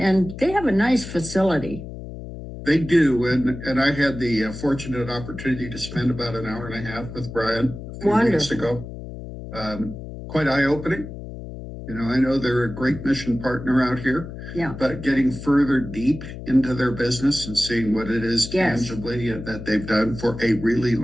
they have a nice facility. They do, and I had the fortunate opportunity to spend about an hour and a half with Brian a few weeks ago. Quite eye-opening. You know, I know they're a great mission partner out here. Yeah. But getting further deep into their business and seeing what it is tangibly that they've done for a really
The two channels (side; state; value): left; noise; hum, 11 dB below the sound